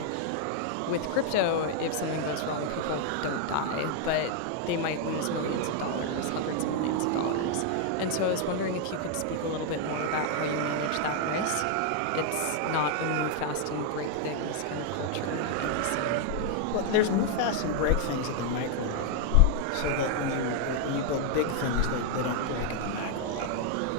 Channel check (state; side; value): different; both; correlation 0.00